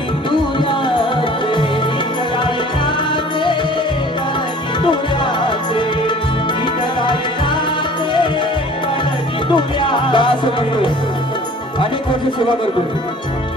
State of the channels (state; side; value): normal; both; correlation 0.49